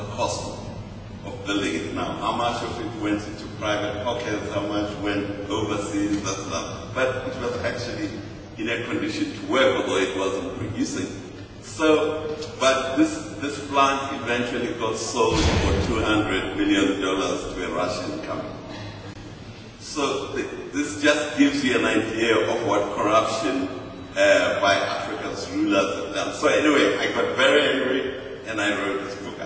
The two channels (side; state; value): both; identical; correlation 1.00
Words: cost of building it now. How much of it went into private pockets, how much went overseas, that's not. But it was actually in a condition to work, although it wasn't producing. So, but this plant eventually got sold for $200 million to a Russian company. So this just gives you an idea of what corruption by Africa's rulers have done. So anyway, I got very angry and I wrote this book,